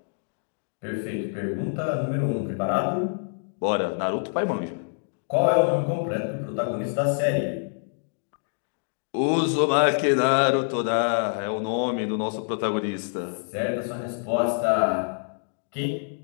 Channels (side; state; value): right; silent; digital silence